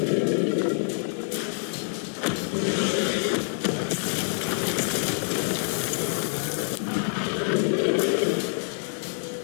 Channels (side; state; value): right; silent; 61 dB below the other